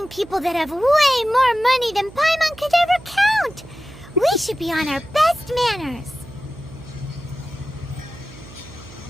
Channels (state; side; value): noise; right; hum, 19 dB below the sound